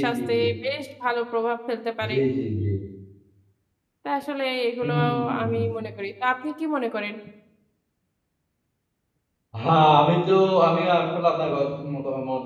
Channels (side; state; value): both; identical; correlation 1.00